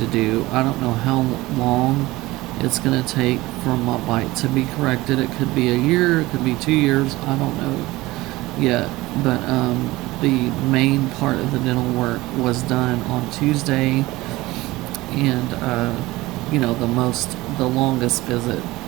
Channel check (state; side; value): quieter; left; 19.4 dB